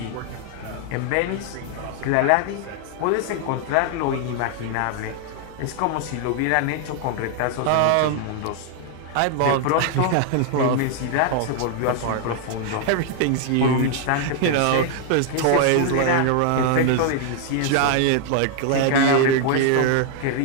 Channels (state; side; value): different; both; correlation 0.00